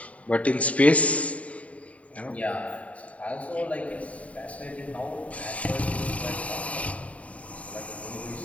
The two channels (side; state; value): right; late; 0.067 ms